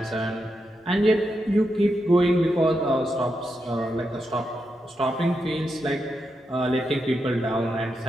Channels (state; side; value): normal; both; correlation 0.85